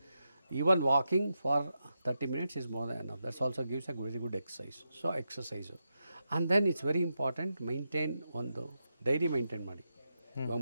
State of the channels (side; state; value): both; inverted; correlation -0.87